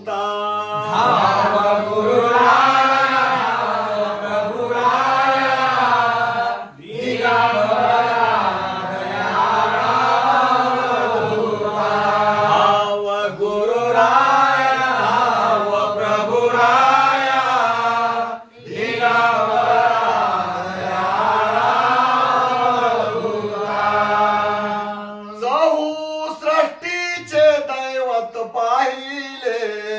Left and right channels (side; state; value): both; identical; correlation 1.00